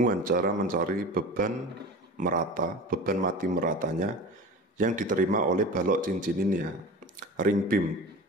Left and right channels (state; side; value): normal; both; correlation 0.34